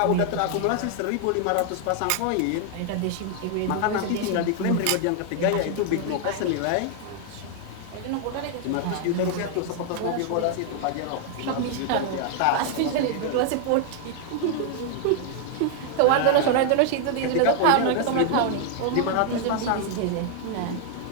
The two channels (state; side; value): different; both; correlation 0.00